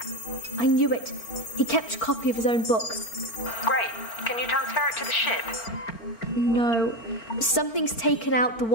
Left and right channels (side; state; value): right; late; 4.4 ms